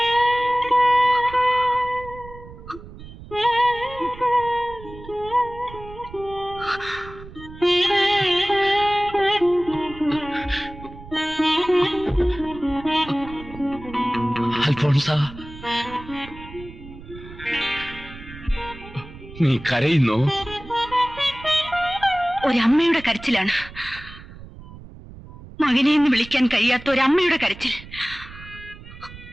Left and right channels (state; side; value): noise; right; rumble, 16 dB below the sound